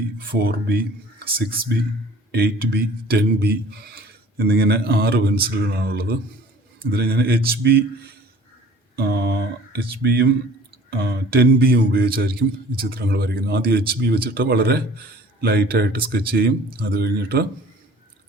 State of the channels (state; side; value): normal; both; correlation 0.48